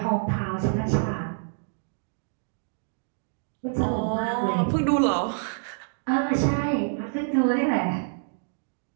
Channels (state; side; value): silent; left; digital silence